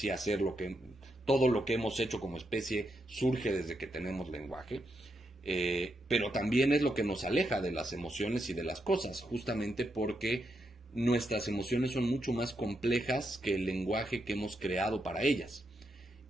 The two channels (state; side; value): normal; both; correlation 0.82